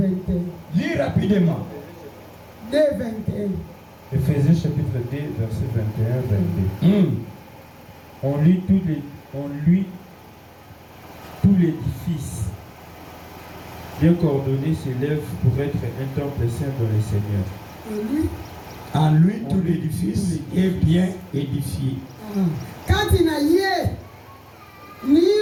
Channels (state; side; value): identical; both; correlation 1.00